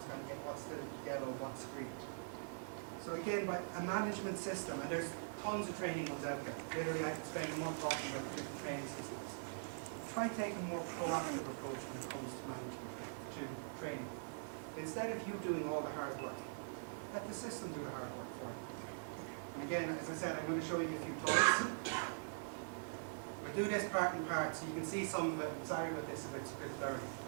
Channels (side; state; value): left; silent; digital silence